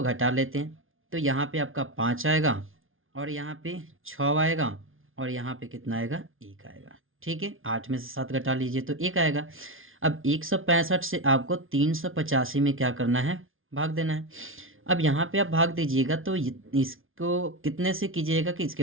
घटा लेते हैं, तो यहाँ पे आपका 5 आएगा, और यहाँ पे 6 आएगा, और यहाँ पे कितना आएगा, 1 आएगा, ठीक है। 8 में से 7 घटा लीजिए तो 1 आएगा। अब 165 से आपको 385 में क्या करना है, भाग देना है। अब यहाँ पे आप भाग दीजिएगा तो इसको कितने से कीजिएगा कि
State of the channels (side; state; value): left; late; 0.59 ms